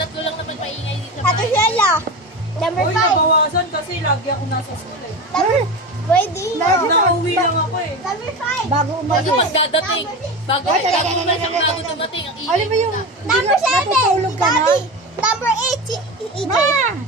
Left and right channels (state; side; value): normal; both; correlation 0.25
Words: lang naman maingay dito. Ate Sheila. Number Uy, 5. nabawasan kasi lagi ako nasa school eh. Nakauwi lang ako eh. Number 5. Bago Kasi umalis. magdadating. Bago dumating ang ingay. Alam mo yung Number 7, natutulog si ka na? Daddy. Number 8, si EJ. Ma!